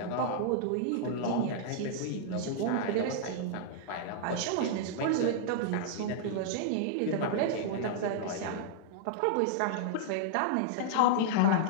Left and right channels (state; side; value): different; both; correlation -0.01